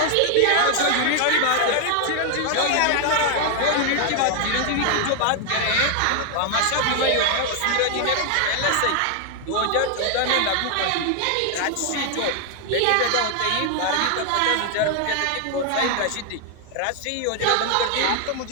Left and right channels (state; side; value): different; both; correlation 0.00